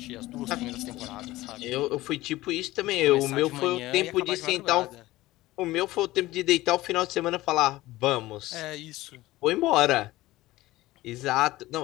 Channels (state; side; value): quieter; right; 17.7 dB